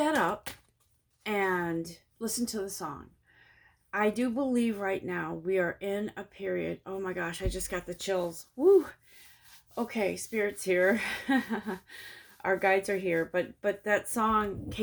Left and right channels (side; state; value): both; identical; correlation 1.00